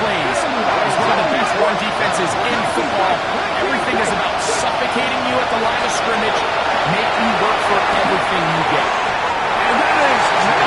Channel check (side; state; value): both; identical; correlation 1.00